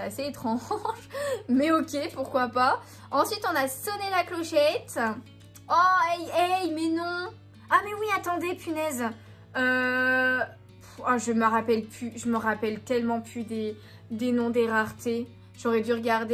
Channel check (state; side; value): identical; both; correlation 1.00